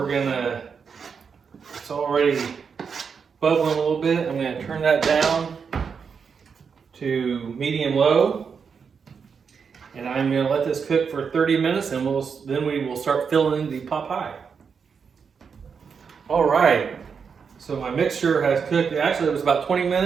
going to, it's already bubbling a little bit. I'm going to turn that down to medium low. And I'm going to let this cook for 30 minutes and then we will start filling the pot pie. All right. So my mixture has cooked. Actually, it was about 20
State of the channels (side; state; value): left; quieter; 6.1 dB